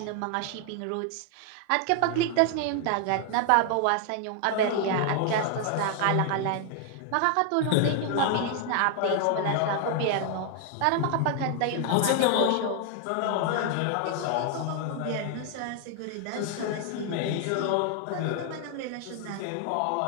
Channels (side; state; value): both; different; correlation 0.00